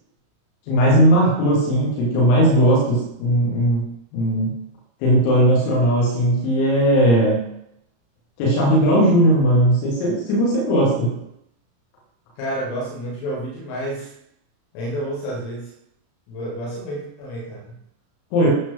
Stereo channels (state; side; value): late; right; 34 ms